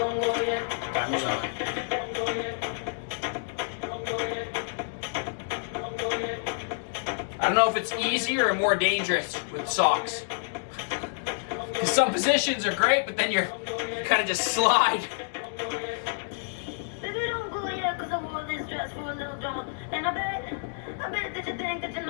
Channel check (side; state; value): right; silent; digital silence